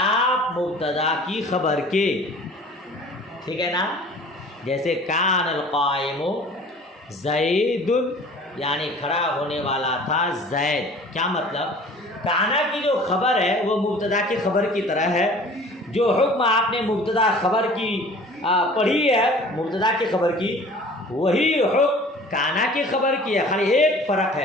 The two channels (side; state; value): both; normal; correlation 0.46